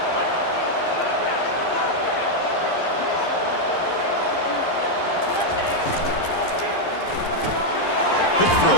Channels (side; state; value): right; late; 11 ms